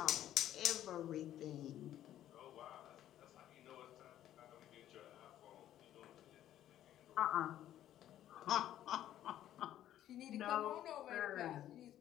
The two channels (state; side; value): quieter; right; 12.1 dB